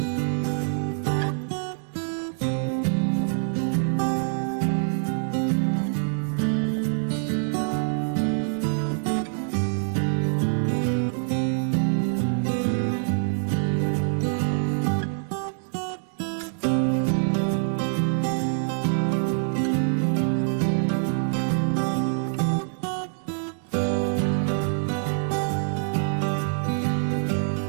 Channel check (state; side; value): silent; left; digital silence